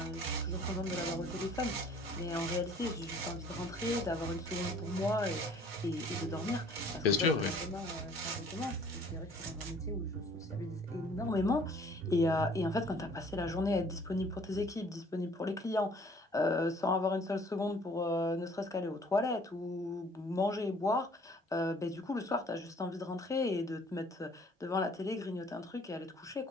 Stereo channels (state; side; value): normal; both; correlation 0.55